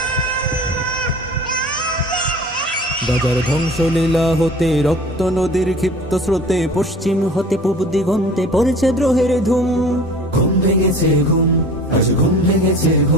গাজার ধ্বংসলীলা হতে রক্ত নদীর ক্ষিপ্ত স্রোতে পশ্চিম হতে পূব দিগন্তে পড়েছে দ্রোহের ধুম। ঘুম ভেঙেছে ঘুম, আজ ঘুম ভেঙেছে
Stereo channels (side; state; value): both; normal; correlation 0.43